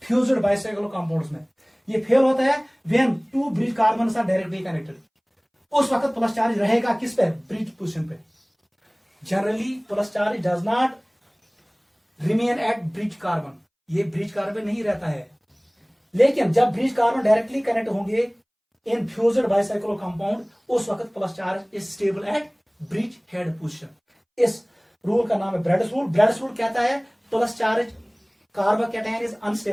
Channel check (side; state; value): both; identical; correlation 1.00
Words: फ्यूज्ड बाइसाइक्लो कंपाउंड्स में। ये फेल होता है when 2 bridge carbon are directly connected, उस वक्त प्लस चार्ज रहेगा किस पे, ब्रिज पोजीशन पे। Generally plus charge does not remain at bridge carbon, ये ब्रिज कार्बन नहीं रहता है। लेकिन जब ब्रिज कार्बन डायरेक्टली कनेक्ट होंगे इन फ्यूज्ड बाइसाइक्लो कंपाउंड, उस वक्त plus charge is stable at bridge head position. इस रूल का नाम है ब्रेड्स रूल। ब्रेड्स रूल कहता है plus charge carbocation is